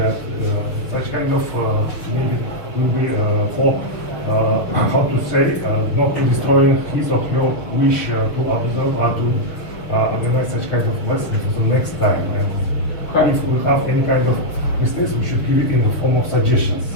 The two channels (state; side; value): late; right; 6.8 ms